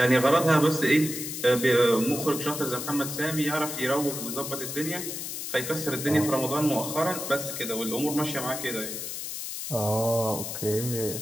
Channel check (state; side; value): noise; left; hiss, 6 dB below the sound